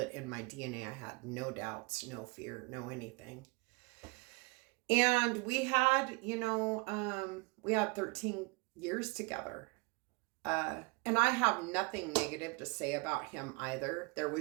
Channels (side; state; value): left; quieter; 28.1 dB